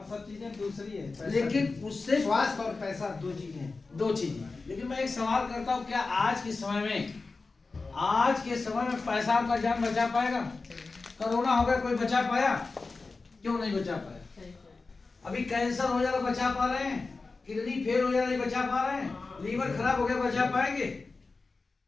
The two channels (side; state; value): right; quieter; 3.9 dB